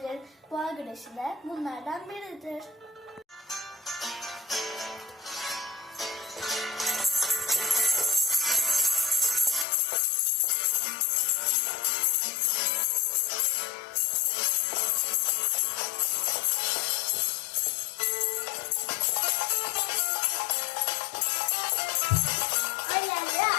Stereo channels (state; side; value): drops out; right; at 9.7 s